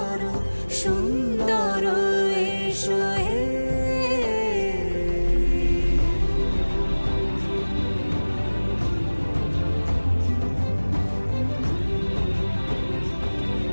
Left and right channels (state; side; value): inverted; both; correlation -1.00